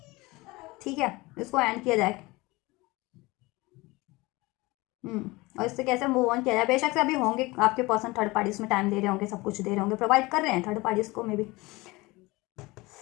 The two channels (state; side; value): quieter; right; 22.3 dB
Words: ठीक है, इसको एंड किया जाए, और इससे कैसे मूव ऑन किया जाए। बेशक से अभी होंगे आपके पर्सन थर्ड पार्टीज में टाइम दे रहे होंगे, सब कुछ दे रहे होंगे, प्रोवाइड कर रहे हैं थर्ड पार्टीज को मे बी,